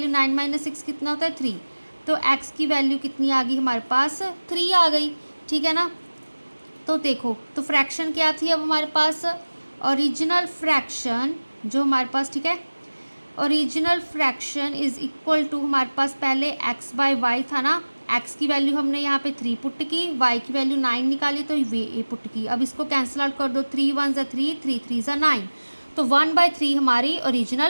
9 - 6 कितना होता है, 3, तो x की वैल्यू कितनी आ गई हमारे पास, 3 आ गई। ठीक है ना, तो देखो तो फ्रैक्शन क्या थी अब हमारे पास, ओरिजिनल फ्रैक्शन जो हमारे पास, ठीक है, original fraction is equal to, हमारे पास पहले x/y था ना, x की वैल्यू हमने यहाँ पे 3 पुट की, y की वैल्यू 9 निकाली तो ये पुट की। अब इसको कैंसिल आउट कर दो, 3 1 = 3, 3 3 = 9, तो 1/3 हमारी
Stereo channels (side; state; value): both; inverted; correlation -1.00